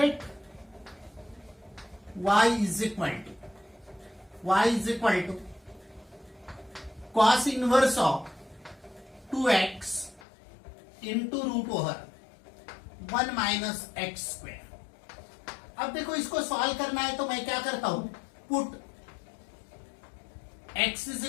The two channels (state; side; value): drops out; right; at 10.2 s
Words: y is equal to cos inverse of 2x into root over 1 minus x square. अब देखो इसको सॉल्व करना है तो मैं क्या करता हूं, put x is